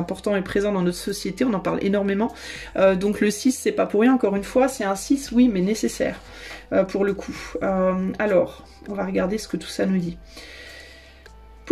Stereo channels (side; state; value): both; identical; correlation 1.00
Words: et présent dans notre société, on en parle énormément. Donc le 6, c'est pas pour rien, encore une fois, c'est un 6, oui, mais nécessaire pour le coup. Alors, on va regarder ce que tout ça nous dit.